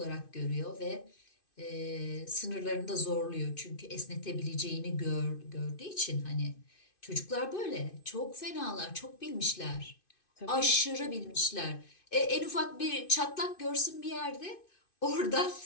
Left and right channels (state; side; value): late; right; 2.5 ms